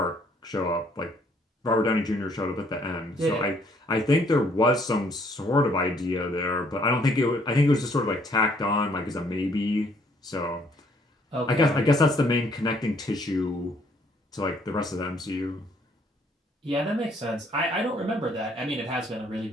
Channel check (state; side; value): normal; both; correlation 0.65